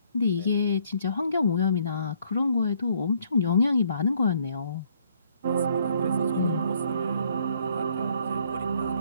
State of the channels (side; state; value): both; inverted; correlation -0.65